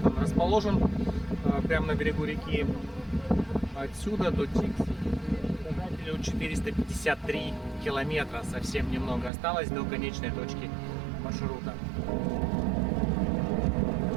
он расположен. Прямо на берегу реки. Отсюда до показателю 453 километра. Совсем немного осталось до конечной точки маршрута.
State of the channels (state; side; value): drops out; left; at 9.3 s